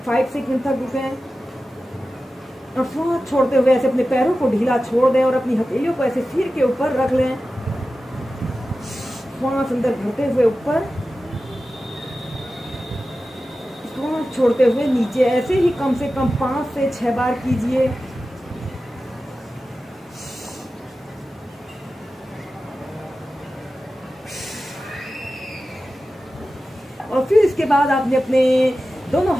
5 सेकंड तक रुकें और श्वास छोड़ते हुए ऐसे अपने पैरों को ढीला छोड़ दें और अपनी हथेलियों को ऐसे सिर के ऊपर रख लें। श्वास अंदर भरते हुए ऊपर, श्वास छोड़ते हुए नीचे। ऐसे ही कम से कम 5 से 6 बार कीजिए। और फिर इसके बाद आपने अपने दोनों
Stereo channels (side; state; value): both; normal; correlation 0.94